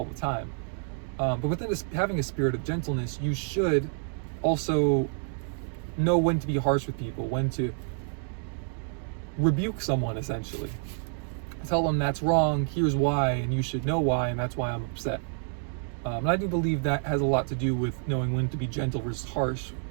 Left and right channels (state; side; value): silent; left; 56 dB below the other